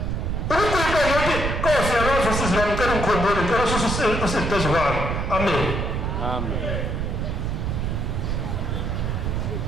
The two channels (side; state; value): right; noise; rumble, 1 dB below the sound